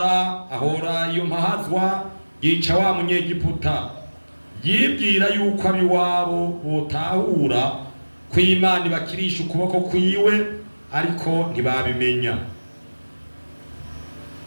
ahora iyo mpahazwa yica wa munyegiputa. Yibwira yuko abiwabo botahura ko Imana ibakirisha ukuboko kwiwe ariko ntibabimenya.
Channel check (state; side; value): inverted; both; correlation -1.00